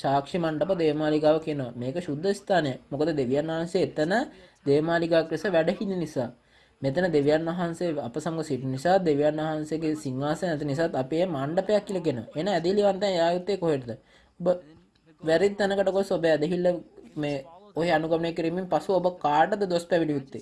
මණ්ඩප දේවමාලිගාව කියනවා. මේක සුද්ධ ස්ථානය. මොකද දෙවියන් වහන්සේ එතන දේවමාලිගාවක් ලෙස වැඩ හිඳින නිසා. මෙතන දෙවියන් වහන්සේ අප සමග සිටින නිසා දෙවියන් වහන්සේගේ සිංහාසනය නැති නිසාත් අපි මේ මණ්ඩපයක් කියලා කියනවා. එන ඇදහිලිවන්තයන් යායුත්තේ කොහෙටද? ඔබ වැරදි තැනකට ගොස් ඔබ ඇදහිල්ල මේ ඔය අනුගමනය කිරීමෙන් පසු ඔබ කාටද දොස් පැවිදි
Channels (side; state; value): both; identical; correlation 1.00